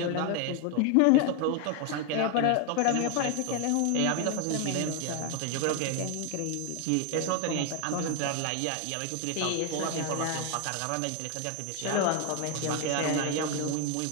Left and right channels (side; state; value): both; different; correlation 0.01